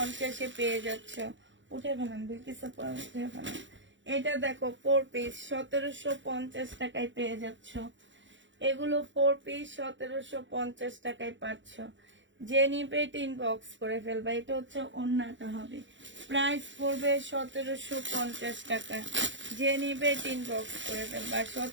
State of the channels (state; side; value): late; left; 0.54 ms